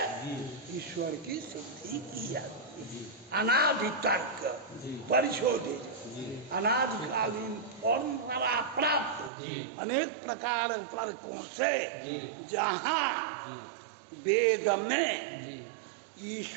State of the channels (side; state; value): left; drops out; at 9.3 s